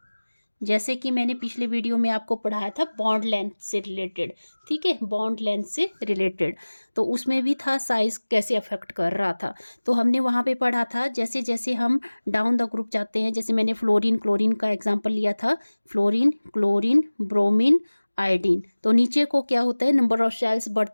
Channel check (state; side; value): inverted; both; correlation -1.00